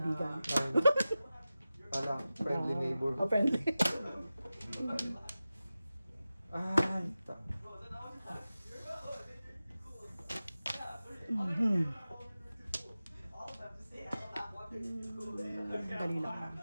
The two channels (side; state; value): both; inverted; correlation -0.95